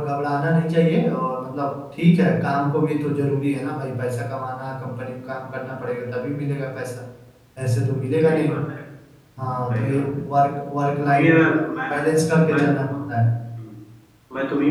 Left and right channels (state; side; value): identical; both; correlation 1.00